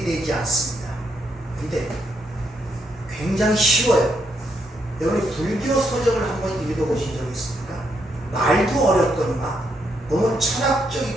되지 않습니다. 근데 굉장히 쉬워요. 여러분이 불교 서적을 한번 읽어보신 적 있습니까? 말도 어렵거니와 너무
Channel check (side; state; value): both; normal; correlation 0.77